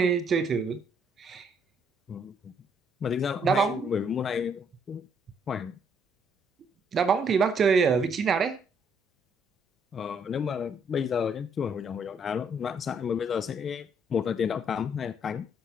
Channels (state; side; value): normal; both; correlation 0.69